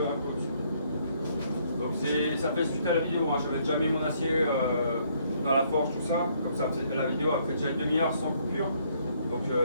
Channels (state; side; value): inverted; both; correlation -0.68